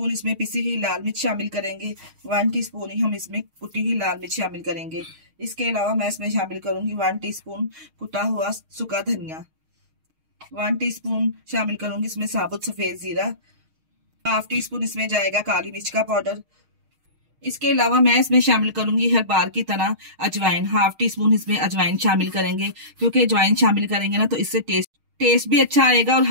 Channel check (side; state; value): left; late; 6.4 ms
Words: इसमें पिसी हुई लाल मिर्च शामिल करेंगे। 1 टीस्पून ही हम इसमें कुटी हुई लाल मिर्च शामिल करेंगे। इसके अलावा मैं इसमें शामिल करूंगी 1 टीस्पून कुटा हुआ सूखा धनिया। 1 टीस्पून शामिल करूंगी इसमें साबुत सफेद जीरा। 1/2 टीस्पून इसमें जाएगा काली मिर्च का पाउडर। इसके अलावा मैं इसमें शामिल करूंगी हर बार की तरह अजवाइन। 1/2 टीस्पून इसमें अजवाइन शामिल करेंगे, क्योंकि अजवाइन शामिल करेंगे ना तो इससे टेस्ट भी अच्छा आएगा और